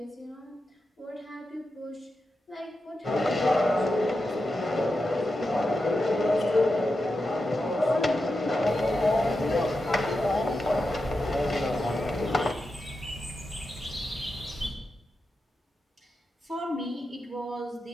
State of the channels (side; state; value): both; normal; correlation 0.89